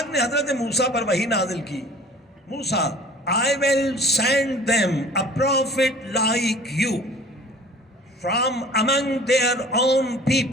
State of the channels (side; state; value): both; normal; correlation 0.47